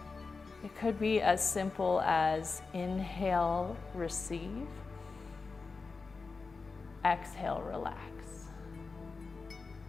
It could be as simple as inhale, receive, exhale, relax.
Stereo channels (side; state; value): right; quieter; 4.3 dB